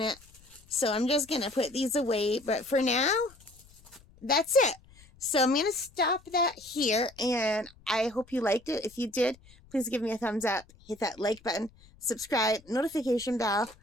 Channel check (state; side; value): noise; left; rumble, 26 dB below the sound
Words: it. So I'm just going to put these away. But for now, that's it. So I'm going to stop that here. And I hope you liked it. If you did, please give me a thumbs up. Hit that like button. Subscribe. Notification bell.